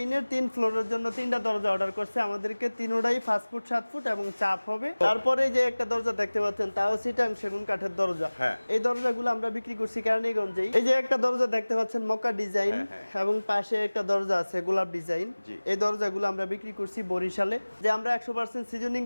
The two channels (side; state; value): both; inverted; correlation -1.00